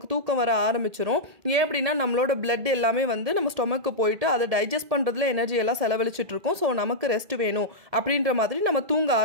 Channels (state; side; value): late; left; 1.7 ms